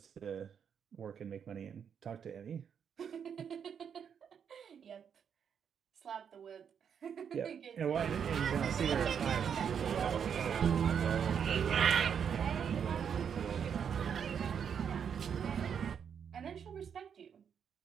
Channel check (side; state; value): left; quieter; 7.6 dB